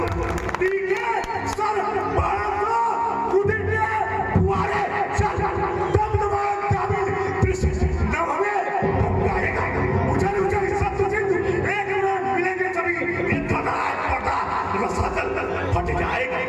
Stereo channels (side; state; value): both; identical; correlation 1.00